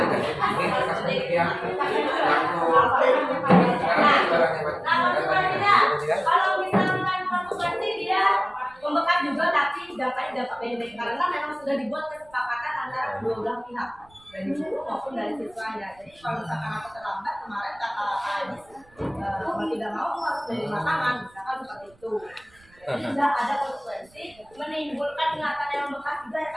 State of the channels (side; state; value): right; noise; rumble, 29 dB below the sound